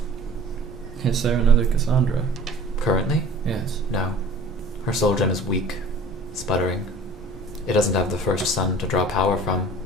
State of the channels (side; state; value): both; normal; correlation 0.45